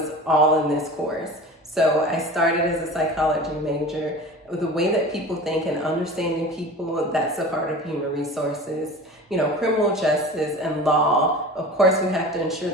all in this course. So I started as a psychology major. The way that people think and understanding people, that's a part of human resources. Criminal justice and law, of course, we have to ensure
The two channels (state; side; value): normal; both; correlation 0.36